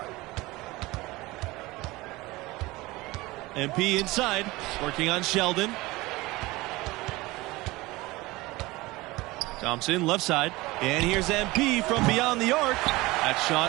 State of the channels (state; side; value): quieter; left; 20.8 dB